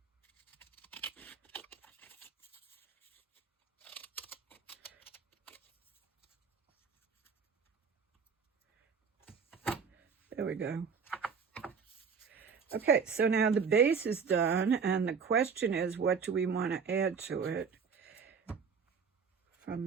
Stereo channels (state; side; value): quieter; left; 5.9 dB